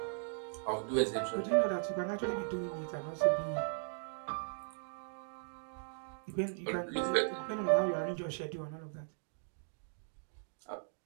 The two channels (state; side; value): silent; left; digital silence